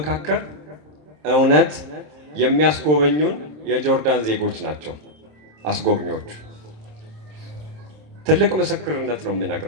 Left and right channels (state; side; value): late; left; 26 ms